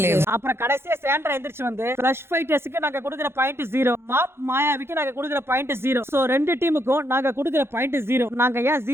அப்புறம் கடைசியா சாண்ட்ரா எந்திரிச்சு வந்து ஃப்ளஷ் ஃபைட்டர்ஸ்க்கு நாங்க கொடுக்குற பாயிண்ட் 0, மாப் மாயாவிக்கு நாங்க கொடுக்குற பாயிண்ட் 0. சோ 2 டீமுக்கும் நாங்க கொடுக்குற பாயிண்ட் 0. நாங்க ஏன்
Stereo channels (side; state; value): left; late; 0.12 ms